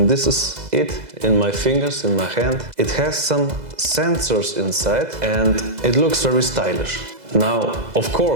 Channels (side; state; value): left; late; 2.0 ms